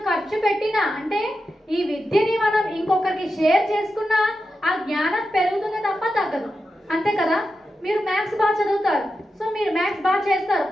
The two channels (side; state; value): both; normal; correlation 0.89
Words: ఖర్చు పెట్టినా అంటే ఈ విద్యని మనం ఇంకొకరికి షేర్ చేసుకున్నా ఆ జ్ఞానం పెరుగుతుంది తప్ప తగ్గదు. అంతే కదా. మీరు మ్యాథ్స్ బాగా చదువుతారు, సో మీరు మ్యాథ్స్ బాగా చేస్తారు,